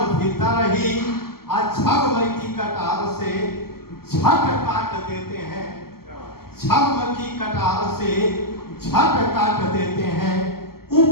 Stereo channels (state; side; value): late; right; 0.94 ms